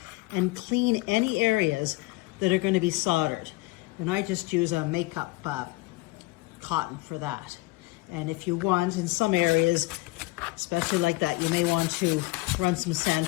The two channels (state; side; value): quieter; right; 21.9 dB